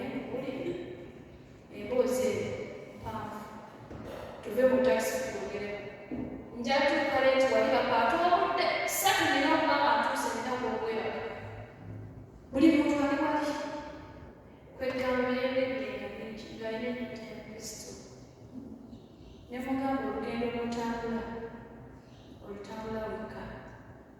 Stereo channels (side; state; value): both; identical; correlation 1.00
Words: mukuli emboozi eyo mpanvu tuve mu takisi twogereko njatuuka leeti wali bakaatwobudde satu nina okubanga ntuuse nina gwobweraka buli muntu ali wali kwegamba mirembe egenda mingi ng'alina enyota ya Kristo nemugamba olugendo lwotambula olutambula wekka